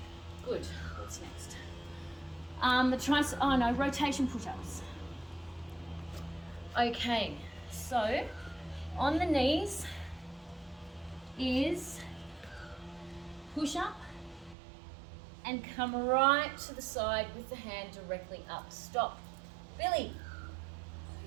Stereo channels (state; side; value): drops out; left; at 14.6 s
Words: Good. What's next? Rotation push-ups. Okay, so on the knees is push up and come right to the side with the hand directly up. Stop. Billy.